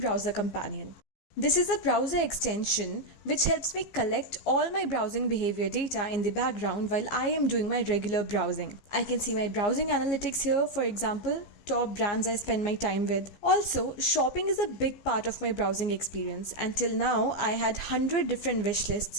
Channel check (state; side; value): late; right; 15 ms